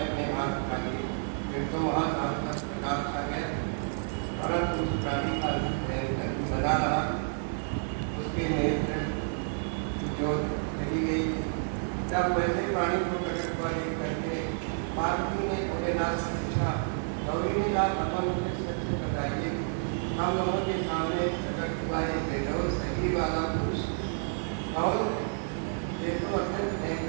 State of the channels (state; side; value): silent; left; digital silence